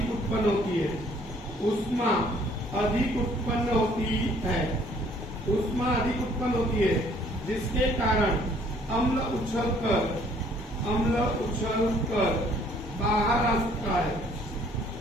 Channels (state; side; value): normal; both; correlation 0.60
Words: उत्पन्न होती है जिसके कारण अम्ल उछलकर बाहर आ सकता है